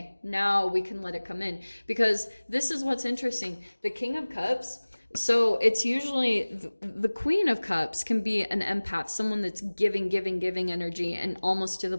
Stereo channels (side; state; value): both; inverted; correlation -1.00